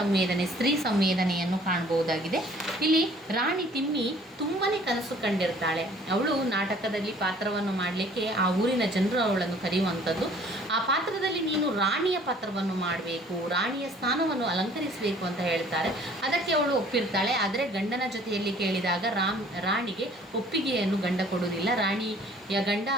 ಸ್ತ್ರೀ ಸಂವೇದನೆಯನ್ನು ಕಾಣಬಹುದಾಗಿದೆ. ಇಲ್ಲಿ ರಾಣಿ ತಿಮ್ಮಿ ತುಂಬಾ ಕನಸು ಕಂಡಿರ್ತಾಳೆ. ಅವಳು ನಾಟಕದಲ್ಲಿ ಪಾತ್ರವನ್ನು ಮಾಡಲಿಕ್ಕೆ ಆ ಊರಿನ ಜನರು ಅವಳನ್ನು ಕರೆಯುವಂಥದ್ದು. ಆ ಪಾತ್ರದಲ್ಲಿ ನೀನು ರಾಣಿಯ ಪಾತ್ರವನ್ನು ಮಾಡಬೇಕು, ರಾಣಿಯ ಸ್ಥಾನವನ್ನು ಅಲಂಕರಿಸಬೇಕು ಅಂತ ಹೇಳ್ತಾರೆ. ಅದಕ್ಕೆ ಅವಳು ಒಪ್ಪಿರ್ತಾಳೆ. ಆದರೆ ಗಂಡನ ಜೊತೆಯಲ್ಲಿ ಕೇಳಿದಾಗ ರಾಣಿಗೆ ಒಪ್ಪಿಗೆಯನ್ನು ಗಂಡ ಕೊಡುವುದಿಲ್ಲ. ರಾಣಿಯ ಗಂಡ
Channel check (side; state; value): both; normal; correlation 0.55